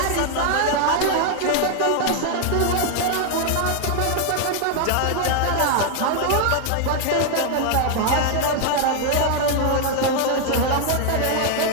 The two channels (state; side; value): different; both; correlation 0.00